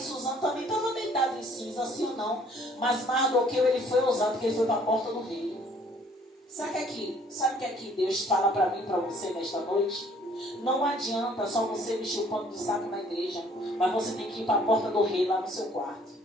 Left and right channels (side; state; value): both; normal; correlation 0.59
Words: Suzano também estava deitado em cinza, sim ou não? Mas Mardoqueu, ele foi ousado, porque ele foi para a porta do rei. Sabe que aqui Deus fala para mim, para você nesta noite? Não adianta só você vestir o pano de saco na igreja, mas você tem que ir para a porta do rei lá no seu quarto.